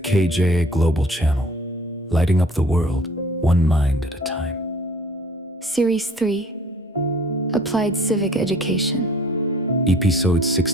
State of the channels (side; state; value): both; normal; correlation 0.52